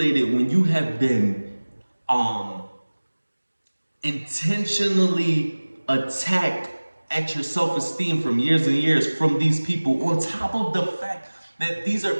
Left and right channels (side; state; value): both; inverted; correlation -1.00